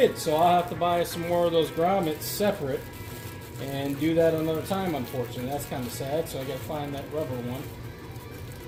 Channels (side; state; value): both; identical; correlation 1.00